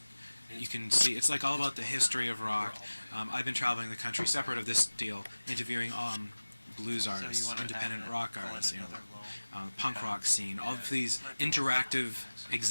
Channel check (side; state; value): both; inverted; correlation -1.00